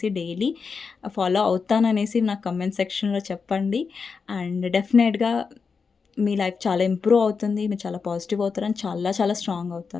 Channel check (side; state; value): right; quieter; 5.3 dB